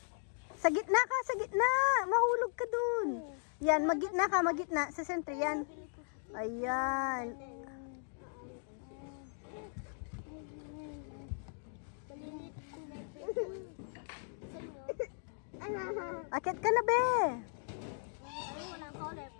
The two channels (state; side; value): silent; right; 53 dB below the other